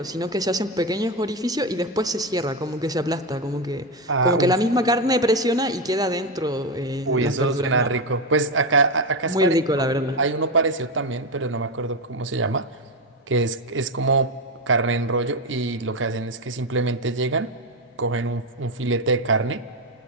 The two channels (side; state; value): both; normal; correlation 0.11